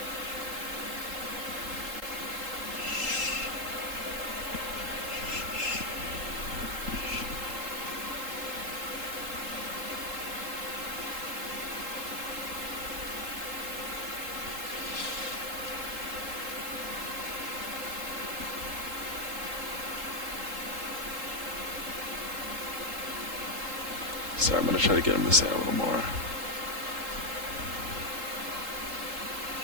Sorry, I'm going to try to get him to say a little more.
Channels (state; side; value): late; left; 3.8 ms